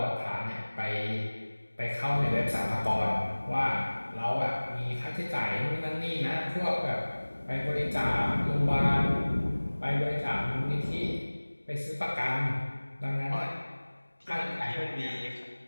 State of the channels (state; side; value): inverted; both; correlation -1.00